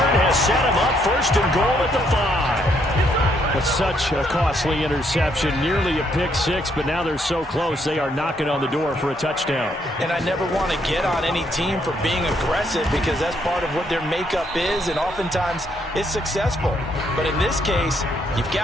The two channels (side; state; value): both; normal; correlation 0.72